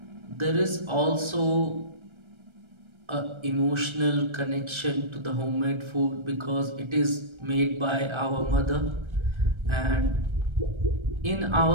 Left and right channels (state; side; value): late; left; 1.3 ms